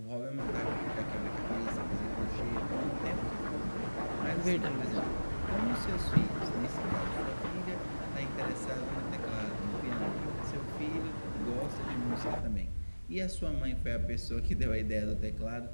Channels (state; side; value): inverted; both; correlation -1.00